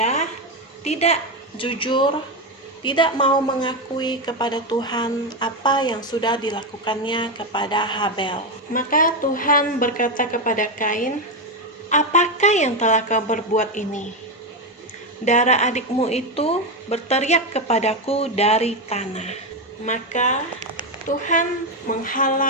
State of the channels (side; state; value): both; normal; correlation 0.10